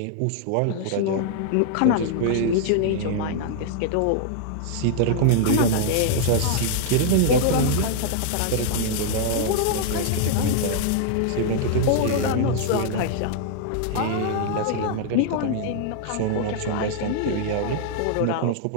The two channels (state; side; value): different; both; correlation -0.01